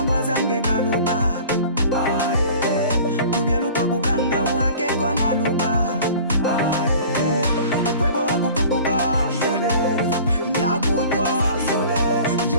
ngwazange kaluba. Tubelu twakukanga wake kona luba. Ubwebo wakupupuka nyakutwa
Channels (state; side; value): inverted; both; correlation -0.44